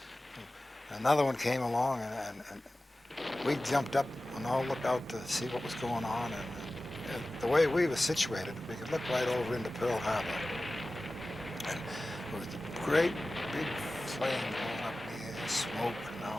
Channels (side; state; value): both; normal; correlation 0.96